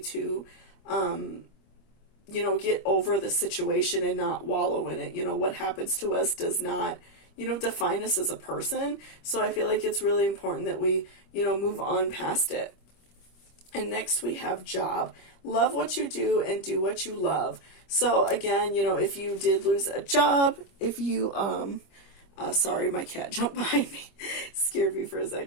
get over the situation and not wallow in it. What happens to us does not, define us as a person. So I feel like it's really important that we, move on past it. And next we have job. Love what you do and do what you love. So again, if you did lose a job, if you, sorry, my cat jumped behind me, scared me for a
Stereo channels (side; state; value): right; late; 25 ms